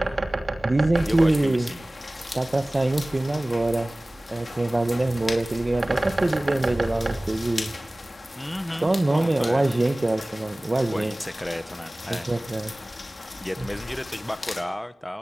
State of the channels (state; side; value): normal; both; correlation 0.98